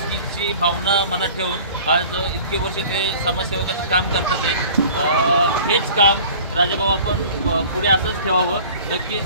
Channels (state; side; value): inverted; both; correlation -0.45